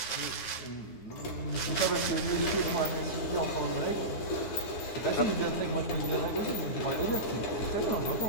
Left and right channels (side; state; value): right; late; 9.7 ms